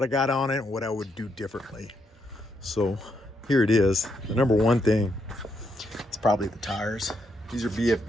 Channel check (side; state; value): both; normal; correlation 0.78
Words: I got on it, and what I would do differently. So here it is. The number one thing is probably the tires. These are BF